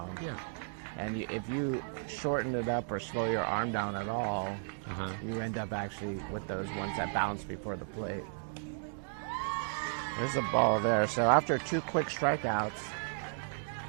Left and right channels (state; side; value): silent; left; digital silence